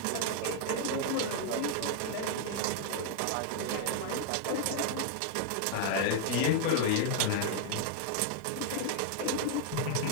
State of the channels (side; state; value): both; different; correlation 0.00